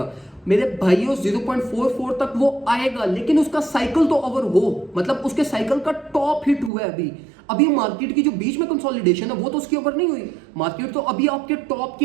मेरे भाइयों 0.44 तक वो आएगा, लेकिन उसका साइकिल तो ओवर हो, मतलब उसके साइकिल का टॉप हिट हुआ है अभी मार्केट की जो बीच में कंसोलिडेशन है वो तो उसकी ओवर नहीं हुई। मार्केट तो अभी आपके टॉप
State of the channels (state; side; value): drops out; left; at 6.7 s